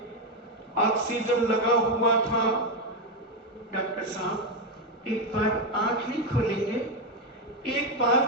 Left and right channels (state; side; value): normal; both; correlation 0.07